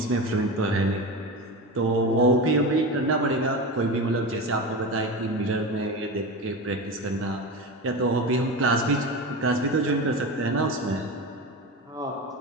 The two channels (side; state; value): both; normal; correlation 0.24